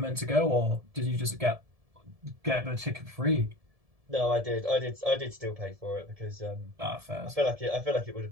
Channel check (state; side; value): late; left; 1.7 ms